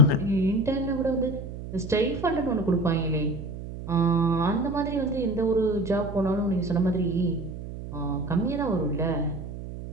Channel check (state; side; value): noise; right; hum, 10 dB below the sound